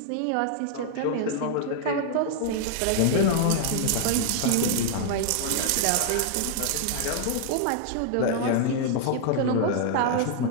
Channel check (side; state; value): both; different; correlation 0.00